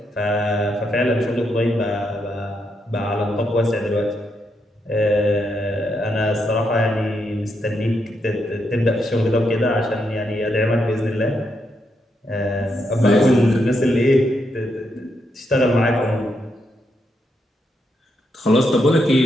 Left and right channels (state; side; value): normal; both; correlation 0.80